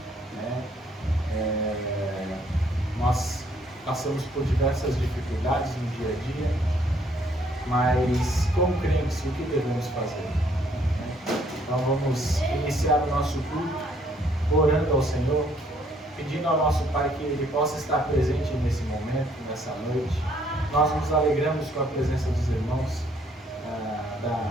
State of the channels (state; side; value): normal; both; correlation 0.66